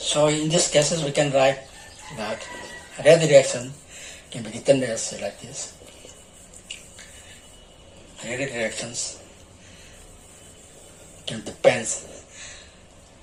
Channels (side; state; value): both; identical; correlation 1.00